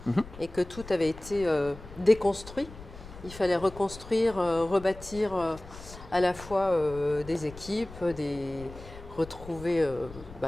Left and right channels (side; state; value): left; noise; rumble, 16 dB below the sound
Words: et que tout avait été déconstruit, il fallait reconstruire, rebâtir à la fois des équipes, retrouver